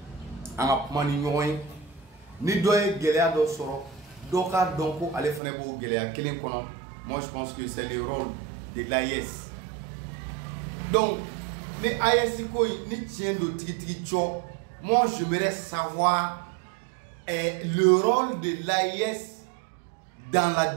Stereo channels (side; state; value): left; drops out; at 5.4 s